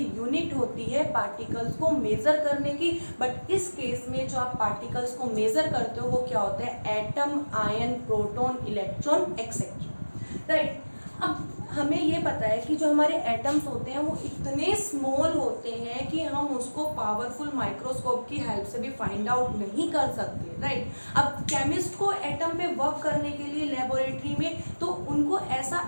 यूनिट होती है पार्टिकल्स को मेजर करने की। बट इस केस में जो आप पार्टिकल्स को मेजर करते हो वो क्या होता है, atom, ion, proton, electron etcetera, right. अब हमें ये पता है कि जो हमारे एटम्स होते हैं वो इतने स्मॉल होते हैं कि हम उसको पावरफुल माइक्रोस्कोप की हेल्प से भी फाइंड आउट नहीं कर सकते, राइट। अब केमिस्ट को एटम पे वर्क करने के लिए लेबोरेटरी में तो उनको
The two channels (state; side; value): inverted; both; correlation -1.00